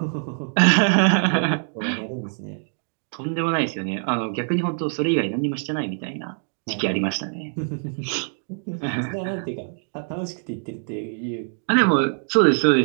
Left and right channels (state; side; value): silent; left; 62 dB below the other